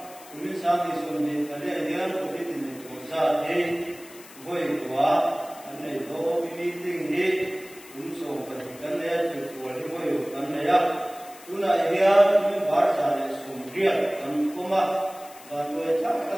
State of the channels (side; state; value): left; noise; hiss, 20 dB below the sound